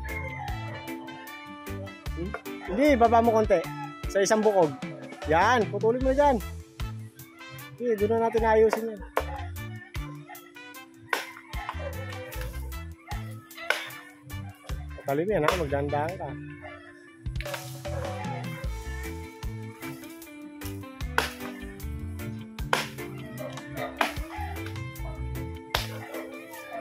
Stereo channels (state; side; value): identical; both; correlation 1.00